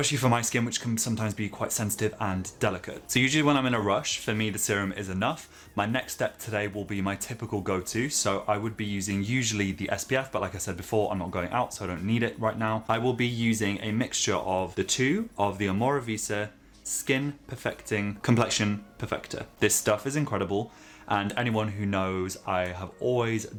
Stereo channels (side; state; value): both; identical; correlation 1.00